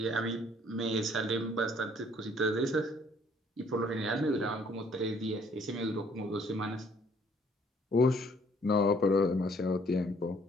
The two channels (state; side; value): normal; both; correlation 0.61